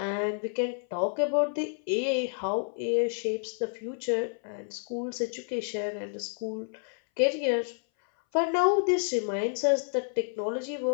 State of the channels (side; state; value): right; silent; 58 dB below the other